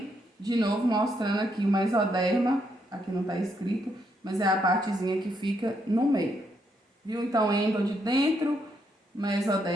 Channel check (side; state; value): both; normal; correlation 0.76